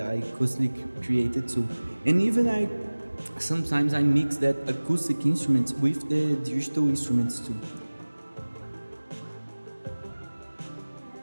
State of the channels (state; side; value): inverted; both; correlation -1.00